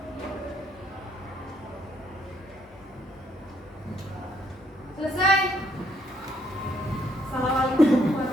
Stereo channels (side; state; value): both; normal; correlation 0.69